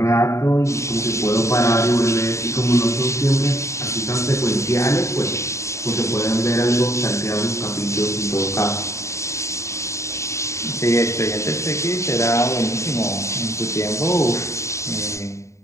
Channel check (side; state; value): right; late; 0.14 ms